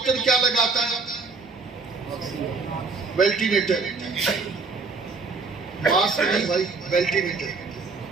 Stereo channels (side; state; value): left; quieter; 4.2 dB